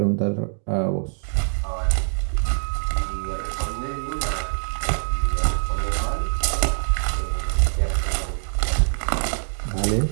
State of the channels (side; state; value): left; silent; digital silence